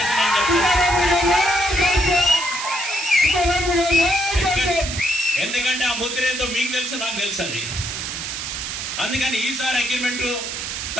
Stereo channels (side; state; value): right; noise; hiss, 5 dB below the sound